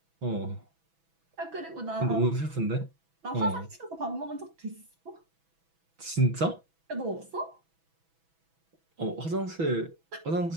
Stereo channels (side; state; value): left; late; 6.1 ms